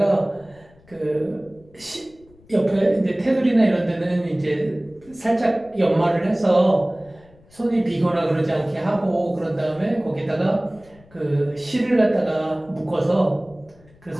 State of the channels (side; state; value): left; noise; rumble, 27 dB below the sound